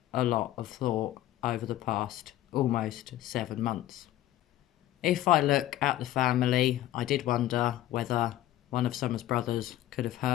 a lot of thought over the past almost 7 months. If I look at the family, I did wonder whether one of Summer's brothers could have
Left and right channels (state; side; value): quieter; right; 14.0 dB